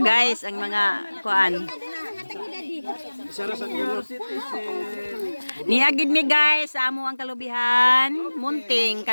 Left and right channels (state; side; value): inverted; both; correlation -1.00